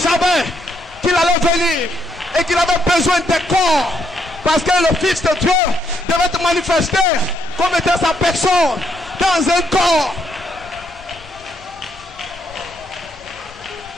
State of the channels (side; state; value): both; normal; correlation 0.74